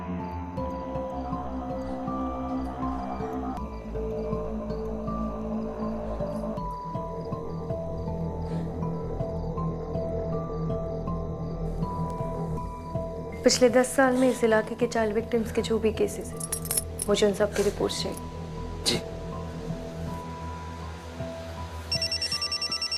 पिछले 10 साल में इस इलाके के चाइल्ड विक्टिम्स के जो भी केसेस हैं, मुझे उन सब की रिपोर्ट्स चाहिए। जी।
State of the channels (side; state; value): both; identical; correlation 1.00